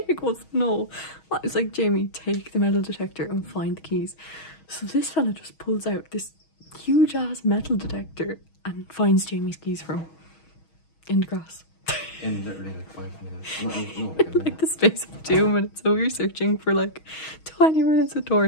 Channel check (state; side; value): late; right; 6.3 ms